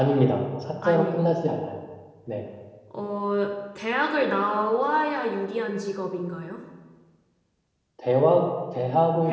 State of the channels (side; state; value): both; identical; correlation 1.00